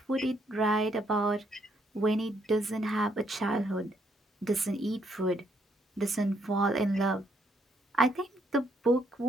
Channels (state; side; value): normal; both; correlation 0.72